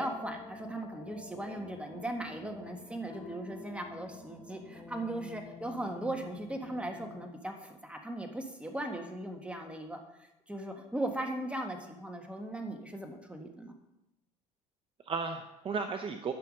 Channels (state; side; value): normal; both; correlation 0.67